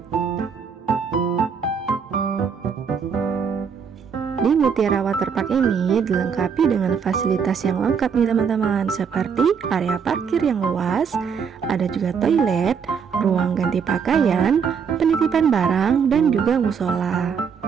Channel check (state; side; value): quieter; left; 6.5 dB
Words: Di Mutiara Waterpark ini dilengkapi dengan fasilitas yang lengkap nih teman-teman, seperti area parkir yang luas, ada juga toilet, ruang ganti pakaian, penitipan barang, dan juga musola.